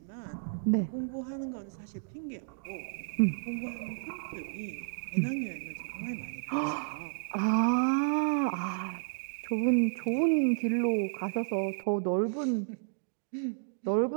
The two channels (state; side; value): silent; left; digital silence